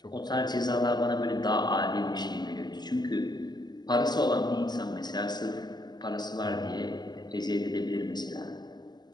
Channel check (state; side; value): late; right; 0.20 ms